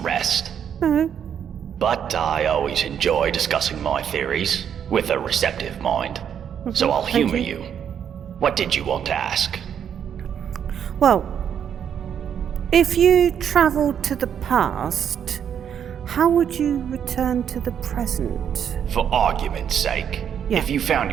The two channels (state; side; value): quieter; left; 8.5 dB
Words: rest. No. But I always enjoy discussing my theories with a receptive mind. So I'll humor you. What did you want to ask? Well, if you travelled to the past, how would you return to the present? For argument's sake, Yeah. if you found